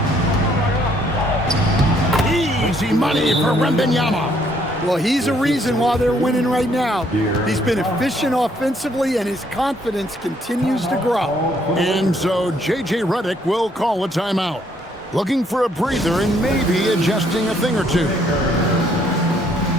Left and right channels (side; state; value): both; normal; correlation 0.67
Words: Easy money for Wembanyama. Well, he's a reason why they're winning right now. He's been efficient offensively, and his confidence continues to grow. And so J.J. Redick will call a timeout. looking for a breather and maybe adjusting a thing or two.